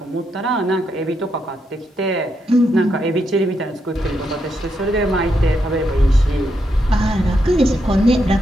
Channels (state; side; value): normal; both; correlation 0.81